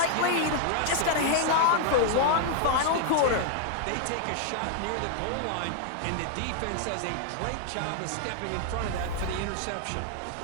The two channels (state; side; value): different; both; correlation 0.00